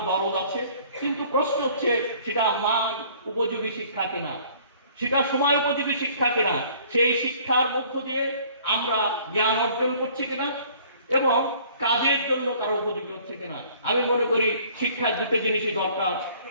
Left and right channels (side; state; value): both; inverted; correlation -0.55